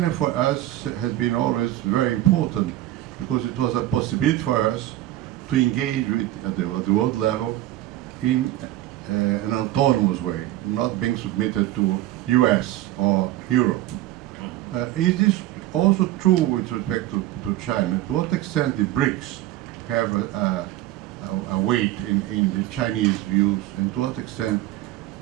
for us has been always very important because it was a possibility for us to engage with at the world level in an autonomous way, not being submitted to US or Europe. Is this also true with respect to China? To what extent the BRICS have a weight in the Chinese views, and to what extent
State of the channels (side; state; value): left; quieter; 14.9 dB